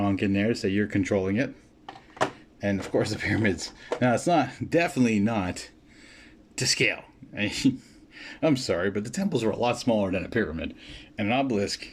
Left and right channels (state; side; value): identical; both; correlation 1.00